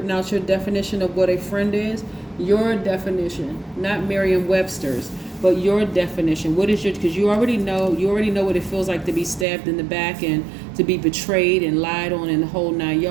out your definition of what a friend is? Your definition, not Merriam-Webster's, but your definition. What is because you already know what it feels like to be stabbed in the back and to be betrayed and lied on and the whole 9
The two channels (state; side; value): drops out; left; at 9.5 s